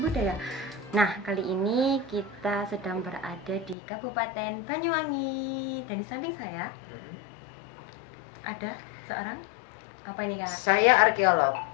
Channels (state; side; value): drops out; right; at 3.8 s